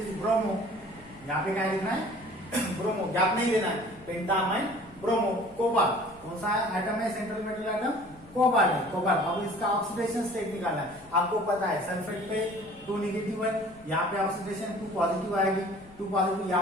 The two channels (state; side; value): noise; left; hum, 25 dB below the sound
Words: ब्रोमो, यहाँ पे क्या लिखना है ब्रोमो, गैप नहीं देना है, पेंटा अमाइन ब्रोमो। कोबाल्ट कौन सा एटम है, सेंट्रल मेटल एटम कोबाल्ट है, कोबाल्ट। अब इसका ऑक्सीडेशन स्टेट निकालना है। आपको पता है सल्फेट पे 2 नेगेटिव है, यहाँ पे ऑक्सीडेशन 2 पॉजिटिव आएगी, 2 पॉजिटिव।